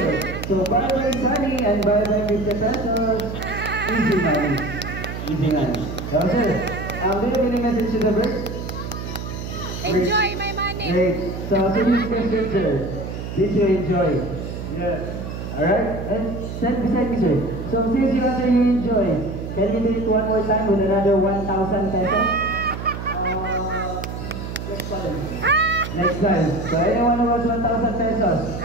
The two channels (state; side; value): noise; right; hum, 7 dB below the sound